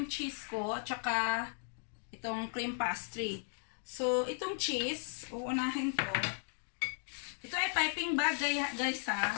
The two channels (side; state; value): right; silent; 54 dB below the other